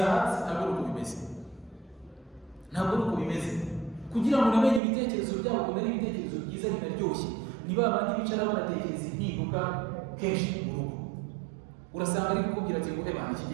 hasi. Ntabwo ari uko bimeze, ntabwo ari uko bimeze. Kugira ngo unamenye ibitekerezo byabo, kumenya ibitekerezo byiza binaryoshye, ni ba bandi bicara banatekereza impinduka kenshi mu rugo. Urasanga ari kukubwira ati ngo ebana iki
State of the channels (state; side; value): drops out; left; at 4.8 s